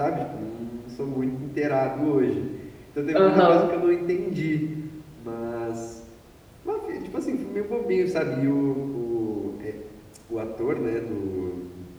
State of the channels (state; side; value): identical; both; correlation 1.00